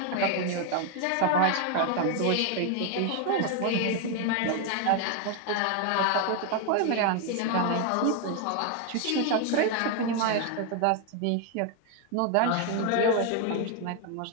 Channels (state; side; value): different; both; correlation 0.01